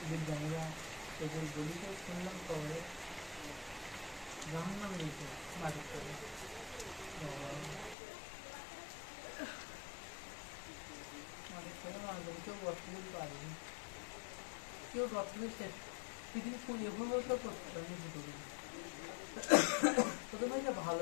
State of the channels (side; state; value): right; drops out; at 8.0 s